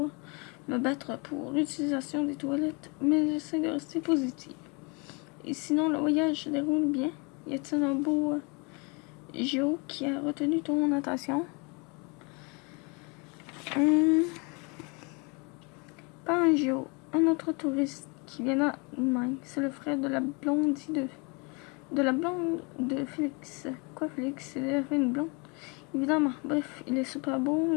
me battre pour l'utilisation des toilettes, mais j'essaie de rester positive. Et sinon, le voyage se déroule bien. Y a-t-il un beau géo qui a retenu ton attention? Pas un géo, un autre touriste qui vient d'Allemagne. C'est le frère de la blondie de la blonde de Félix. Quoi, Félix? Il avait une blonde? Évidemment. Bref, il est super beau,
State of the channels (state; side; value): quieter; right; 31.1 dB